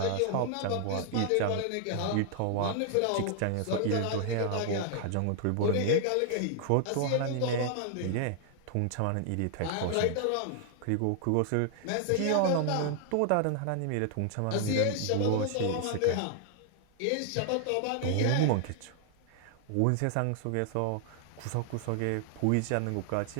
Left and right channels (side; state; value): both; different; correlation 0.00